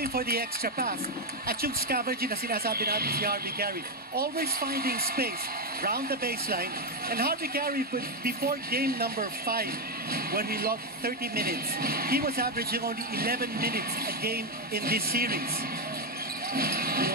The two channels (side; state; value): both; normal; correlation 0.06